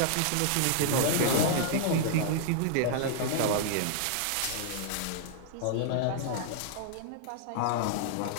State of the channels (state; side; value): different; both; correlation -0.01